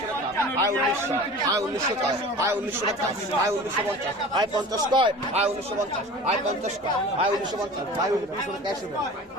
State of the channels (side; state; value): both; normal; correlation 0.39